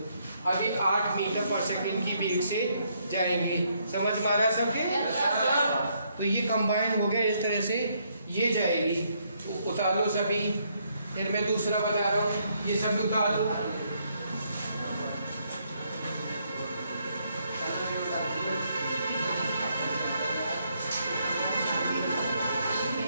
अभी 8 metre पर second की वेग से जाएंगे। समझ में आ रहा है सबके? तो ये कंबाइन हो गया, इस तरह से ये जाएगी। उतार लो सभी, फिर मैं दूसरा बता रहा हूँ, ये सब उतार लो।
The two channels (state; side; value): inverted; both; correlation -0.73